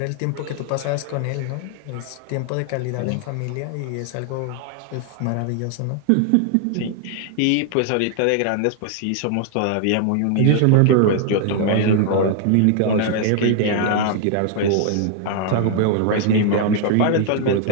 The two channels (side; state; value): both; different; correlation 0.00